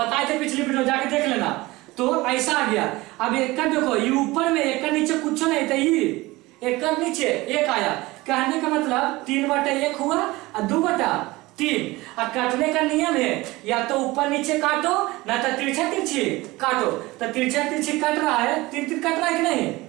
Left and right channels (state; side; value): quieter; left; 20.6 dB